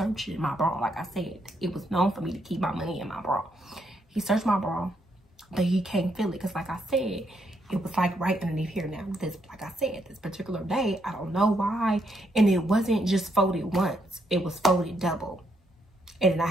my bra. Like I said, it was known for me to keep my money in my bra. He searched my bra, but he can't feel it. Because like I said, it was like right underneath here now. This, like I said, this particular day, I don't know why. And it wasn't just folded once. It was folded double. And then I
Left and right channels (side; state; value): both; normal; correlation 0.76